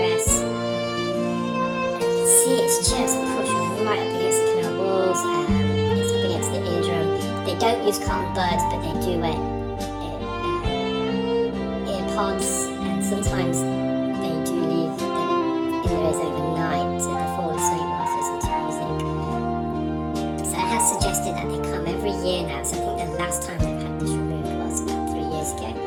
And you can see it's just pushed right up against the canal walls, it's up against the eardrum. They don't use cotton buds, but they do wear earpods, and sometimes they do leave them in their ears overnight so they fall asleep whilst listening to music. So it has suggested that they come every year now, so I think the last time they've had this removed was about 3 years ago,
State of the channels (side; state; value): both; identical; correlation 1.00